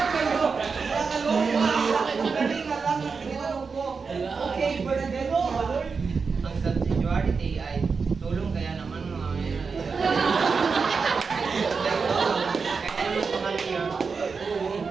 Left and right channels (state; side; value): quieter; left; 5.1 dB